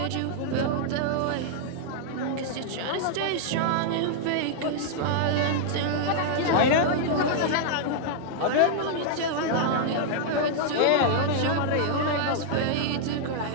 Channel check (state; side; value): different; both; correlation -0.01